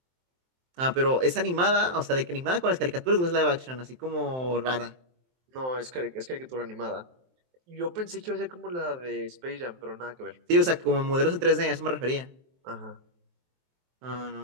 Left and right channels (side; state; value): left; late; 23 ms